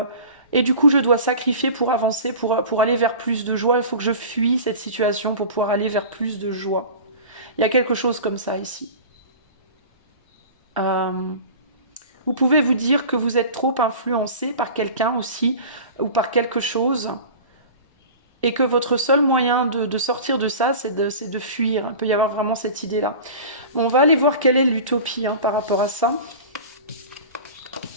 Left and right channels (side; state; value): both; inverted; correlation -0.37